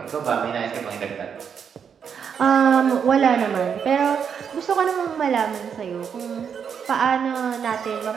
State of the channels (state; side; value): quieter; left; 7.2 dB